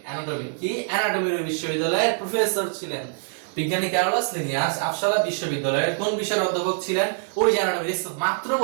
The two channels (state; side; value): silent; left; digital silence